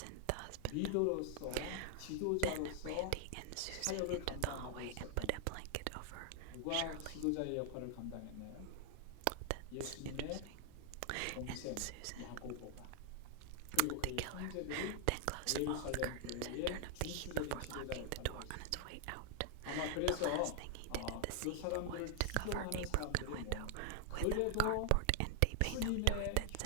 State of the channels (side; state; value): both; different; correlation 0.00